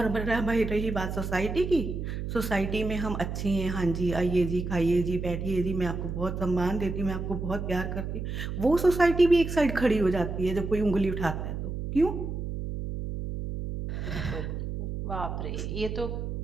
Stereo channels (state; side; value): noise; right; hum, 5 dB below the sound